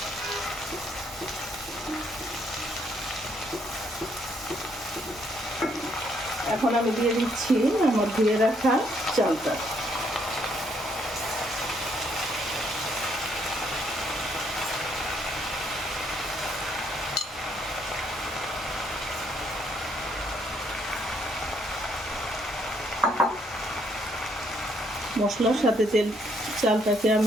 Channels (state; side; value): normal; both; correlation 0.71